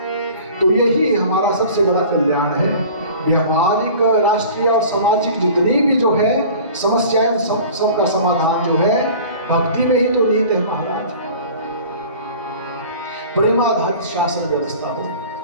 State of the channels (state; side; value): inverted; both; correlation -0.43